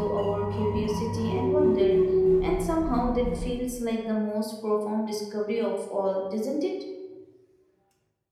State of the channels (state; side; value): identical; both; correlation 1.00